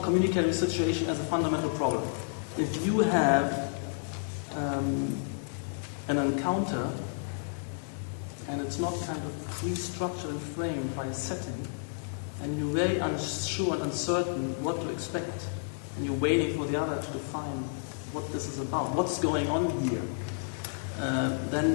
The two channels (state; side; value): silent; right; digital silence